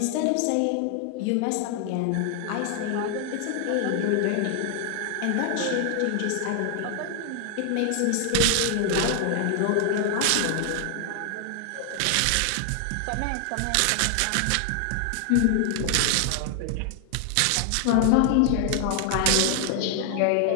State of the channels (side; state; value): both; different; correlation 0.00